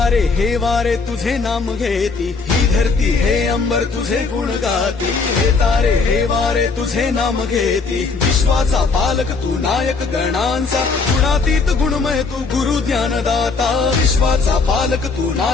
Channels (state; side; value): quieter; right; 4.5 dB